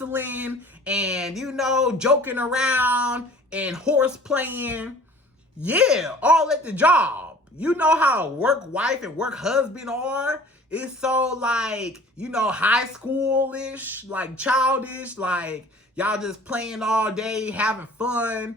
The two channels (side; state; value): both; normal; correlation 0.47